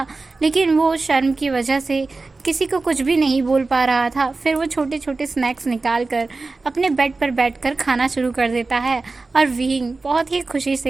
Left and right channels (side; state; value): left; quieter; 3.7 dB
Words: लेकिन वो शर्म की वजह से किसी को कुछ भी नहीं बोल पा रहा था। फिर वो छोटे छोटे स्नैक्स निकाल कर अपने बेड पर बैठकर खाना शुरू कर देता है और विंग बहुत ही खुशी